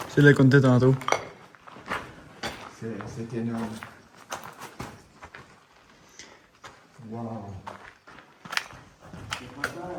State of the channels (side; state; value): both; identical; correlation 1.00